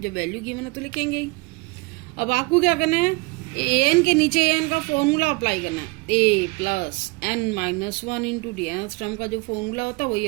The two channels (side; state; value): left; quieter; 27.6 dB